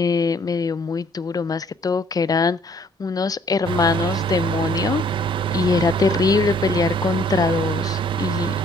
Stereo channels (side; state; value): both; normal; correlation 0.61